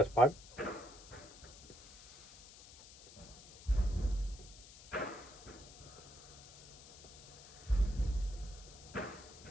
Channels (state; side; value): noise; left; hiss, 18 dB below the sound